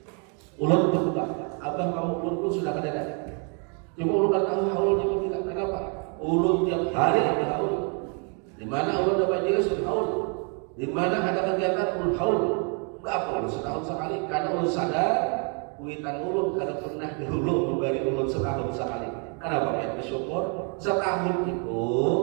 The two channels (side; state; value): left; quieter; 38.7 dB